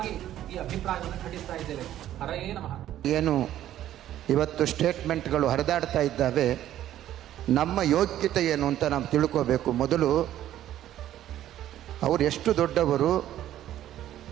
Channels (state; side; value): quieter; left; 12.4 dB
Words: ಈ ಅಭಿಪ್ರಾಯವನ್ನು ಖಂಡಿಸ್ತಾ ಇದ್ದೇವೆ. ಹರಯೇ ನಮಃ. ಏನು ಇವತ್ತು ಸ್ಟೇಟ್ಮೆಂಟ್ಗಳು ಹರಿದಾಡ್ತಾ ಇದ್ದಾವೆ, ನಮ್ಮ ಯೋಗ್ಯತೆ ಏನು ಅಂತ ನಾವು ತಿಳ್ಕೋಬೇಕು. ಮೊದಲು ಅವರು ಎಷ್ಟು